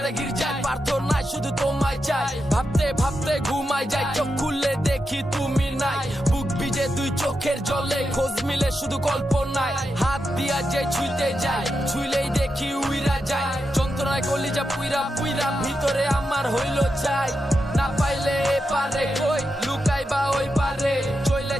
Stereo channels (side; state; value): both; normal; correlation 0.87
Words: গির্জায় প্রার্থনায় শুধু তোমায় চাই। ভাবতে ভাবতে ঘুমাই যায়, চোখ খুললে দেখি তুমি নাই। বুক ভিজে দুই চোখের জলে, খোঁজ মিলে শুধু কল্পনায়। হাত দিয়া যে ছুঁইতে যায়, ছুঁইলেই দেখি উইরা যায়। যন্ত্রণায় কলিজা পুইরা পুইরা ভিতরে আমার হইল চাই। না পাইলে এ পারে কই লুকাই বা ওই পারে, চইলে